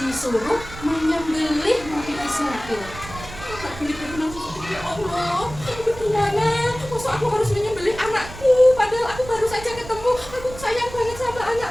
disuruh menyembelih Nabi Ismail. Nabi Ibrahim langsung sedih, ya Allah, gimana? Masa aku harus menyembelih anakku? Padahal aku baru saja ketemu. Aku sayang banget sama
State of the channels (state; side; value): noise; right; rumble, 14 dB below the sound